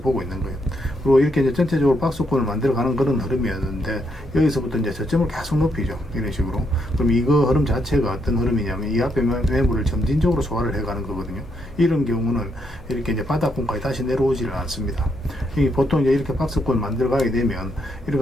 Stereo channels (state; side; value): normal; both; correlation 0.77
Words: 보고 있는 거예요. 그리고 이렇게 이제 전체적으로 박스권을 만들어가는 그런 흐름이었는데 여기서부터 이제 저점을 계속 높이죠. 이런 식으로. 그럼 이거 흐름 자체가 어떤 흐름이냐면 이 앞에 매물을 점진적으로 소화를 해가는 거거든요. 이런 경우는 이렇게 이제 바닥권까지 다시 내려오지를 않습니다. 보통 이제 이렇게 박스권 만들어가게 되면 이렇게